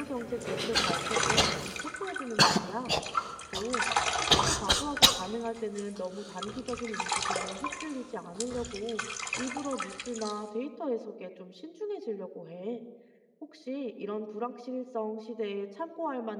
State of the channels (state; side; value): identical; both; correlation 1.00